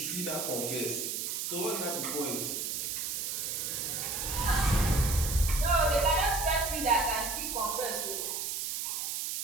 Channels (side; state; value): right; noise; hiss, 2 dB below the sound